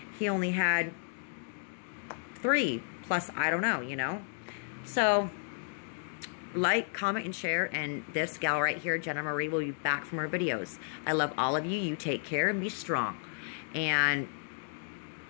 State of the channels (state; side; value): silent; right; digital silence